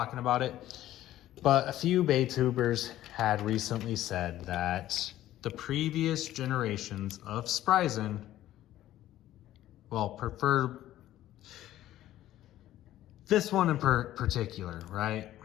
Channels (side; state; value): right; quieter; 13.7 dB